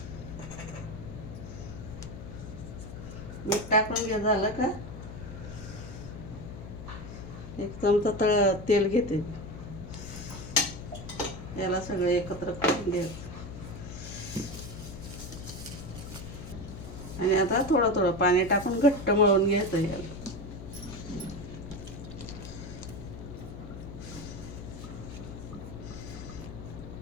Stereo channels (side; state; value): left; noise; hum, 11 dB below the sound